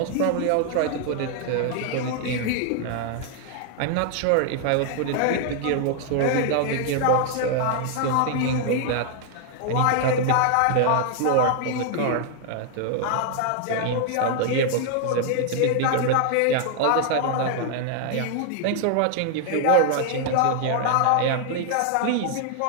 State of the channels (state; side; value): different; both; correlation 0.00